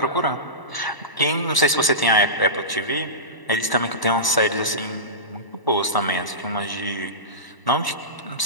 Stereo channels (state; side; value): late; right; 1.0 ms